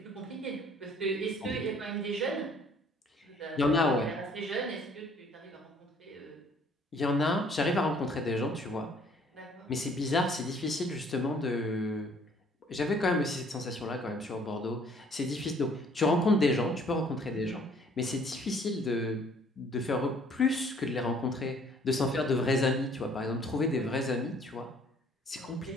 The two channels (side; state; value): both; normal; correlation 0.59